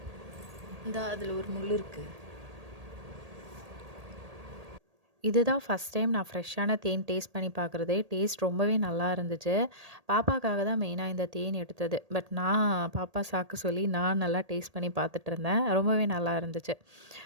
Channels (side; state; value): left; late; 1.8 ms